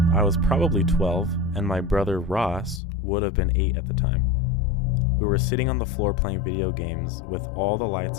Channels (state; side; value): drops out; right; at 2.8 s